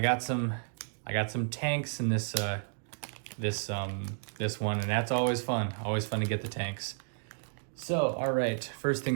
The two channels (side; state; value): left; silent; digital silence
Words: some tanks in this one, and that's always fun. Always fun to get the tanks. So, all right, first